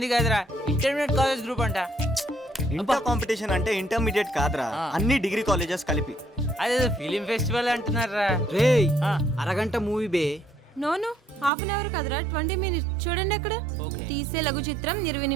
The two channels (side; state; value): left; drops out; at 11.5 s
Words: కాదురా ఇంటర్మీడియట్ కాలేజ్ గ్రూప్ అంట. ఇంటర్ కాంపిటీషన్ అంటే ఇంటర్మీడియట్ కాదురా, అన్ని డిగ్రీ కాలేజెస్ కలిపి. అదే ఫిలిం ఫెస్టివల్ అంటున్నారా? రే అరగంట మూవీ బే. నోను హాఫ్ అన్ అవర్ కదరా, 20 minutes. చూడండి అక్కడ తీసే లఘు చిత్రం 20